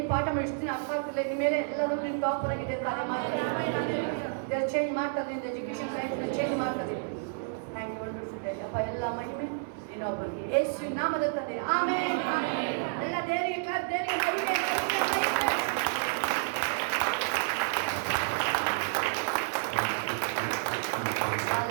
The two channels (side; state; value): left; silent; digital silence